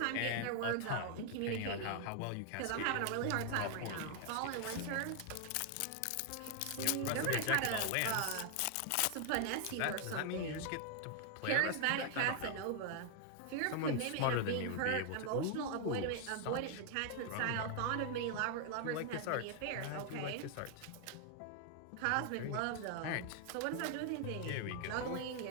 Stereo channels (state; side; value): different; both; correlation 0.00